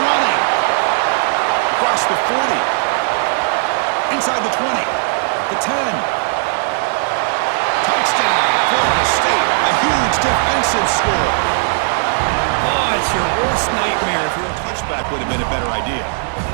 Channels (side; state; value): left; silent; digital silence